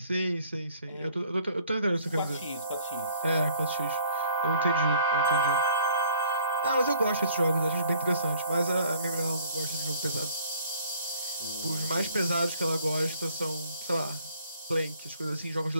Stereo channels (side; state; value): both; inverted; correlation -0.58